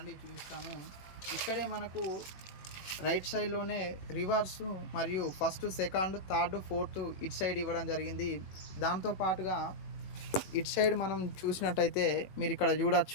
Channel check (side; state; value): right; late; 21 ms